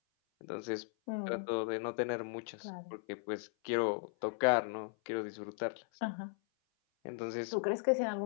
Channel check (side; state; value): right; silent; 53 dB below the other